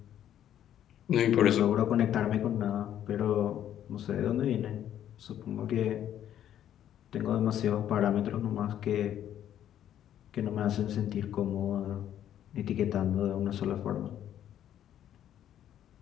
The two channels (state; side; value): quieter; right; 10.9 dB